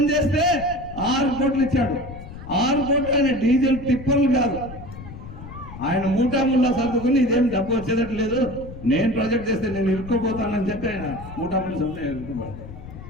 6 కోట్లు ఇచ్చాడు. 6 కోట్లు ఆయన డీజిల్ టిప్పర్లు కాదు, ఆయన మూటాముల్లా సర్దుకుని ఇదేం డబ్బు వచ్చేదట్టు లేదు, నేను ప్రాజెక్ట్ చేస్తే నేను ఇరుక్కోపోతానని చెప్పి ఆయన మూటాములు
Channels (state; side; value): noise; left; rumble, 13 dB below the sound